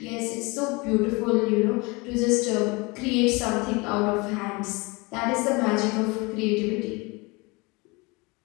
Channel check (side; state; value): right; quieter; 26.3 dB